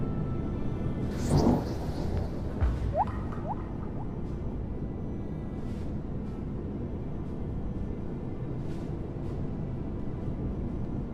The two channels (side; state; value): both; identical; correlation 1.00